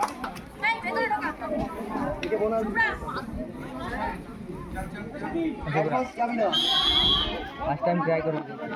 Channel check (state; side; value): identical; both; correlation 1.00